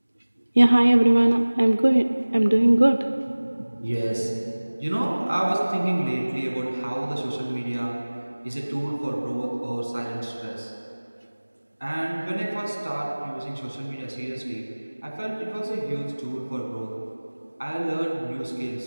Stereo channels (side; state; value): both; inverted; correlation -1.00